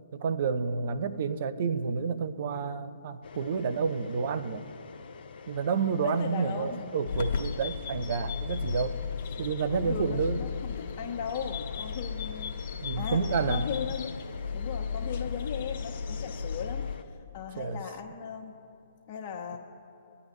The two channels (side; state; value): both; inverted; correlation -0.64